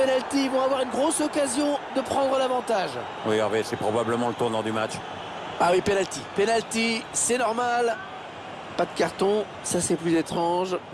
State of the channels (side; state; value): both; identical; correlation 1.00